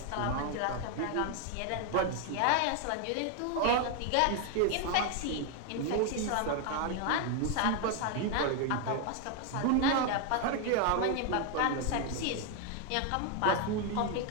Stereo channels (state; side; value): different; both; correlation 0.01